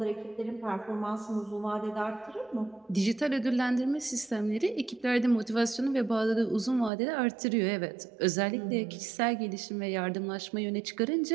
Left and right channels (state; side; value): drops out; left; at 6.9 s